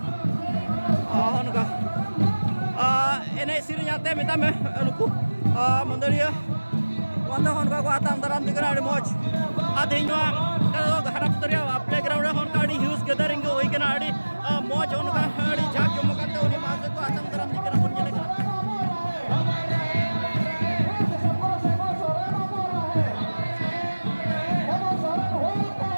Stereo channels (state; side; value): inverted; both; correlation -1.00